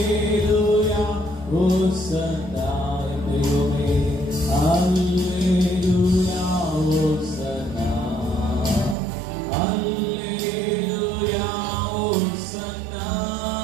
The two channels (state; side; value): drops out; left; at 9.0 s